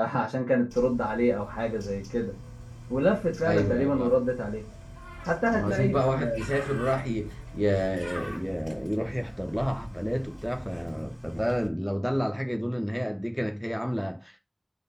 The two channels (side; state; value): both; identical; correlation 1.00